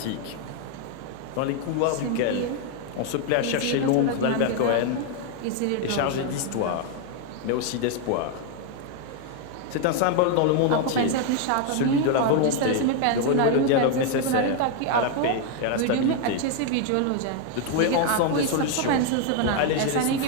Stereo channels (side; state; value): both; different; correlation 0.01